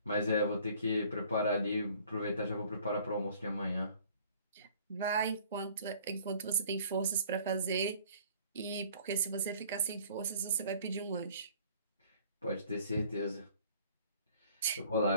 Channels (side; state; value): both; inverted; correlation -0.54